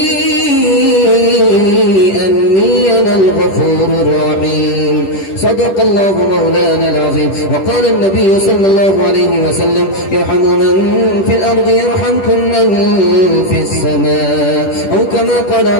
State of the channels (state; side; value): late; right; 10 ms